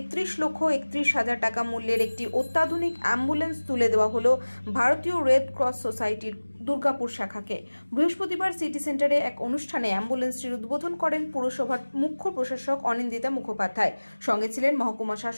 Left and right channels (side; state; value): both; inverted; correlation -1.00